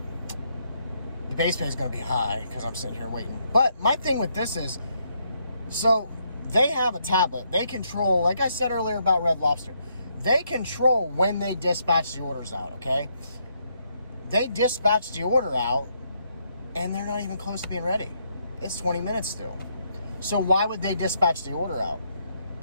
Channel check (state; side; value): inverted; both; correlation -0.75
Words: the base pay is going to be high because I'm sitting here waiting. But my thing with this is, so they have a tablet. They control, like I said earlier about Red Lobster, they control when they dispatch the orders out, okay? They dispatch the order out, and they're not even close to being ready. It's 20 minutes still. So why would they dispatch the order out?